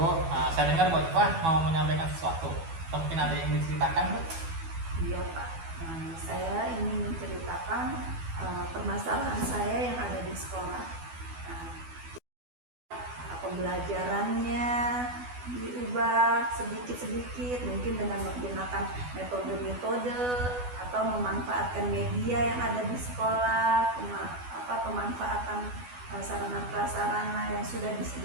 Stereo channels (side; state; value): left; late; 12 ms